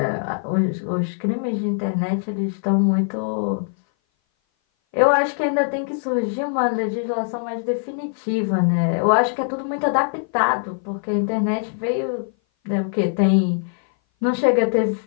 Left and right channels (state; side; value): silent; right; 58 dB below the other